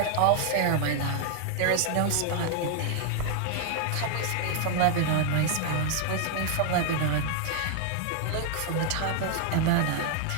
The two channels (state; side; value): different; both; correlation 0.00